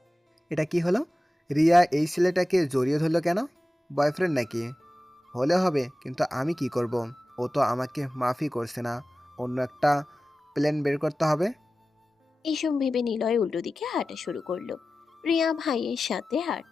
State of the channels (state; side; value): normal; both; correlation 0.95